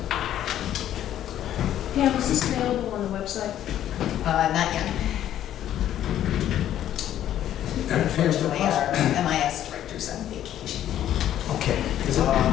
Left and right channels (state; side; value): quieter; right; 11.5 dB